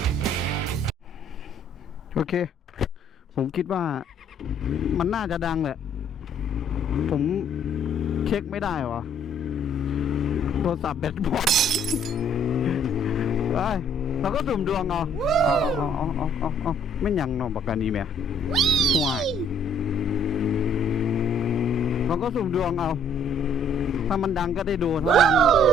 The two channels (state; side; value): normal; both; correlation 0.62